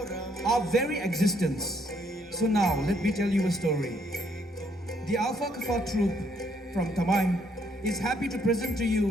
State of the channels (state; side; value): normal; both; correlation 0.69